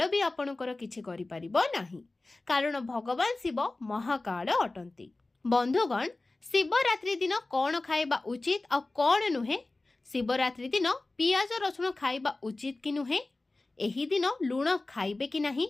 भी आपणकर किछि करि परिबो नाही, कारण भगवान शिव महाकाल अटंती। बंधुगण शिवरात्रि दिन कौन खाइबा उचित आ कौन नुहे? शिवरात्रि दिन पियाज रसुण खाइबा उचित कि नुहे? एही दिन लुण खाइबे कि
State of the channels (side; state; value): right; quieter; 3.1 dB